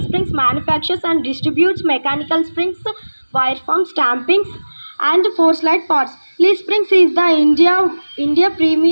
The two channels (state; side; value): inverted; both; correlation -1.00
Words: Springs manufactures and distributes mechanical springs, wire form stampings, and force light parts. Lee Springs is the India